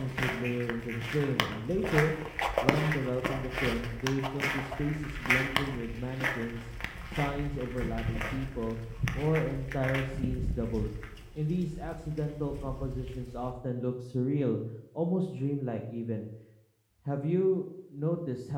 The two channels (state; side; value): identical; both; correlation 1.00